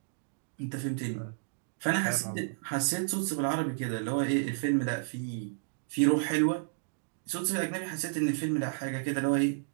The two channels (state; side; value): silent; left; digital silence